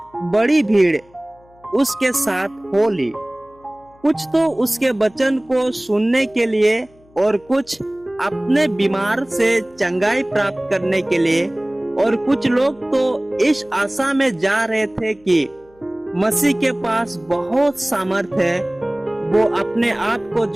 बड़ी भीड़ उसके साथ हो ली। कुछ तो उसके वचन को सुनने के लिए और कुछ अपने बीमार से चंगाई प्राप्त करने के लिए, और कुछ लोग तो इस आशा में जा रहे थे कि मसीह के पास बहुत सामर्थ है, वो अपने आप को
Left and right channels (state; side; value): noise; left; hum, 29 dB below the sound